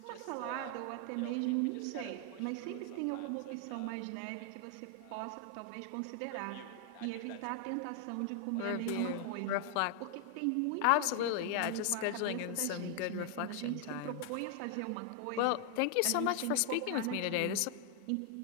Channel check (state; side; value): different; both; correlation 0.00